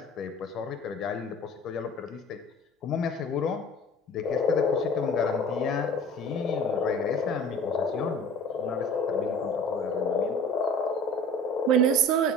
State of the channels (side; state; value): both; normal; correlation 0.43